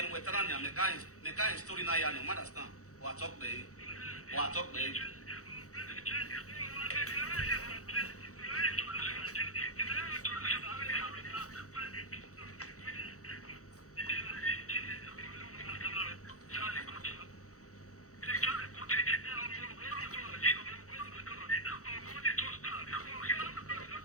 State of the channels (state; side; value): late; right; 0.65 ms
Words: weteran ya mekain story na ya no understand. Wa talk be.